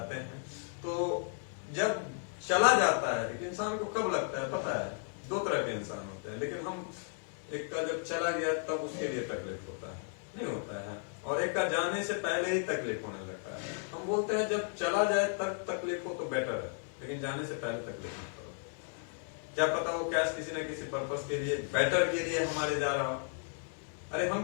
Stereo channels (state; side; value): silent; right; 55 dB below the other